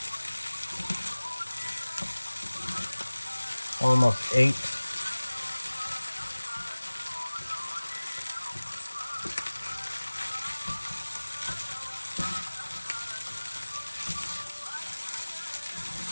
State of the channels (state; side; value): inverted; both; correlation -1.00